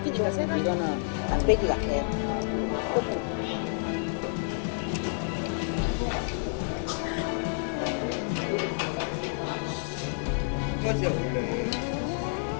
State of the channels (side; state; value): right; silent; digital silence